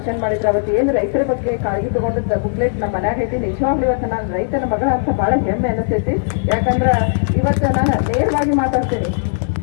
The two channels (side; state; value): right; silent; 57 dB below the other